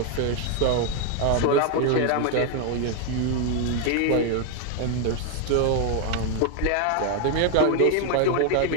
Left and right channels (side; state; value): both; different; correlation 0.01